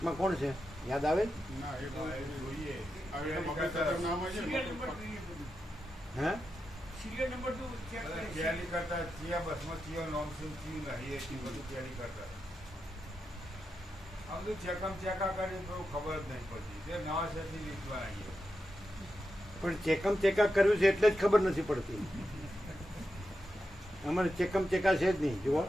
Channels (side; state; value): both; normal; correlation 0.88